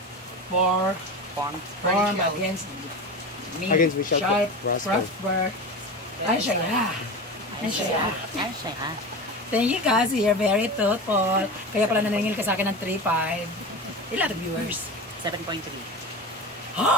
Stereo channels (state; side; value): normal; both; correlation 0.27